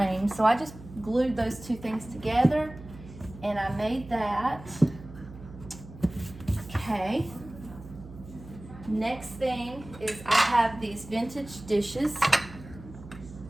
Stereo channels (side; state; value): right; noise; hum, 16 dB below the sound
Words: So I just glued those two things together, and I made that. Okay. Next thing is I have these vintage dishes.